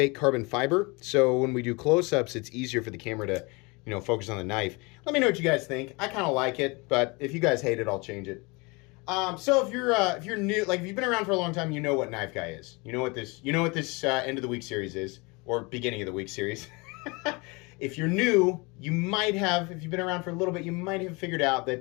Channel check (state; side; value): quieter; right; 27.2 dB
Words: carbon fiber. So when we do close-ups, it's easier for the camera to, focus on the knife. Let me know what you guys think. I kind of like it, but if you guys hate it, I'll change it. So if you're new, like if you've been around for a long time, you know what Knife Guy is. You know what this end of the week series is, or beginning of the week series. If you're new, you might have. If you've been around for a little bit, you might have figured out